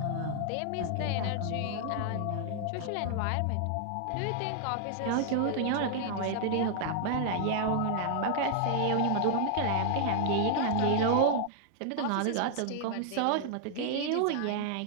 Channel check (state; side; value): different; both; correlation -0.01